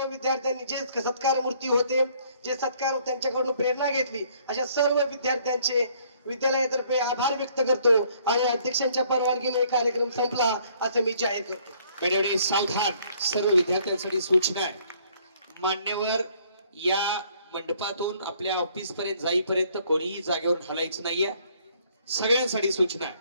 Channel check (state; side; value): inverted; both; correlation -0.62